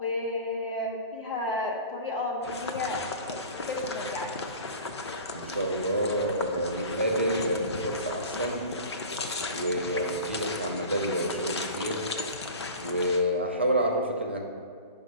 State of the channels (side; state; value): both; inverted; correlation -0.37